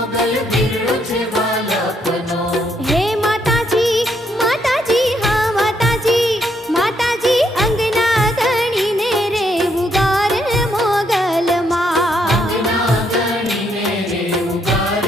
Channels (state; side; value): normal; both; correlation 0.74